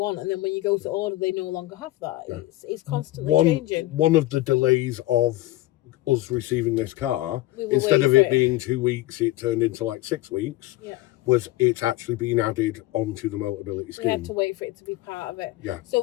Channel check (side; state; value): right; quieter; 17.2 dB